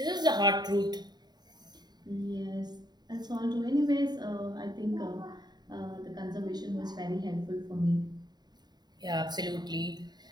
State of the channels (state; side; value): late; left; 0.20 ms